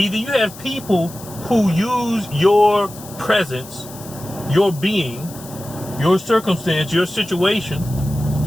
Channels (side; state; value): left; noise; hiss, 17 dB below the sound